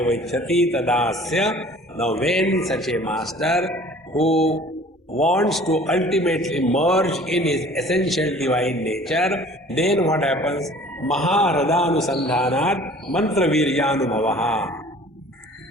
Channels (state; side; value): normal; both; correlation 0.49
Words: ichhati tadasya. Now when such a master who wants to ultimately merge in his essential divine nature, then what happens? Maharadhanusandhanat mantra viryanubhavaha.